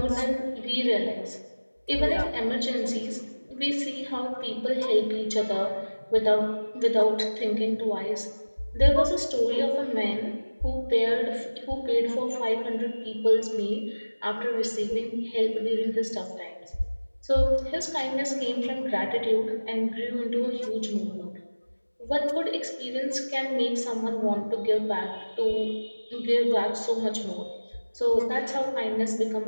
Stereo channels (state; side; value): inverted; both; correlation -1.00